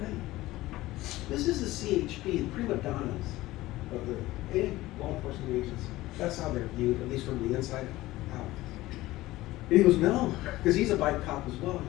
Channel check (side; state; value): right; quieter; 17.5 dB